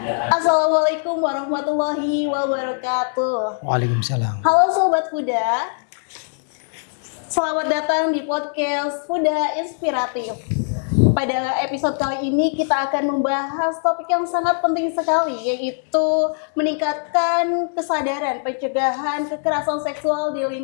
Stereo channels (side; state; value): right; silent; digital silence